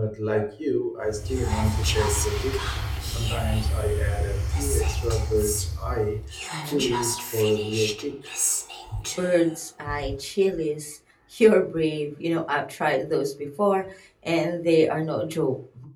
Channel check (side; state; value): both; identical; correlation 1.00